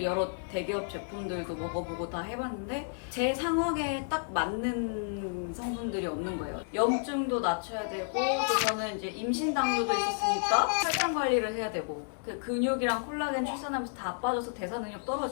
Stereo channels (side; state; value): right; silent; digital silence